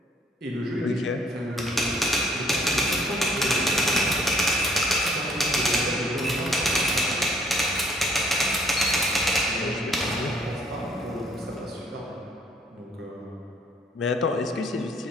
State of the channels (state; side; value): normal; both; correlation 0.62